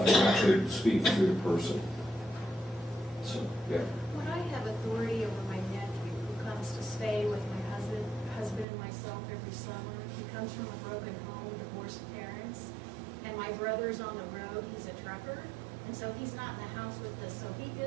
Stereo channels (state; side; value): drops out; left; at 8.7 s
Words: and actually speak through the person. So, yeah. When I have authority over my nephew who comes to stay with my husband and myself every summer, he comes from a broken home, divorced parents, and my brother's on the road, he's a trucker, and so he's not in the house with us, so he